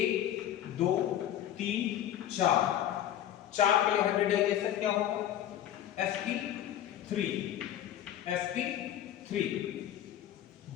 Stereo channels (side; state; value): right; quieter; 11.5 dB